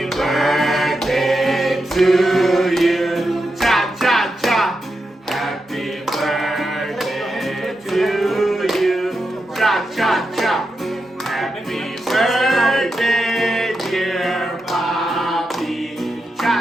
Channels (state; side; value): normal; both; correlation 0.87